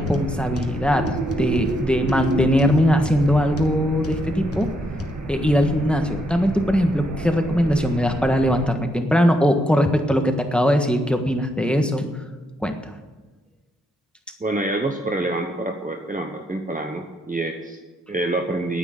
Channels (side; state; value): both; normal; correlation 0.77